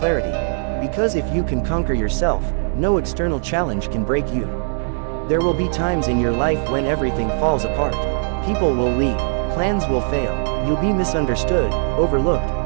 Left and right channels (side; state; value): left; silent; digital silence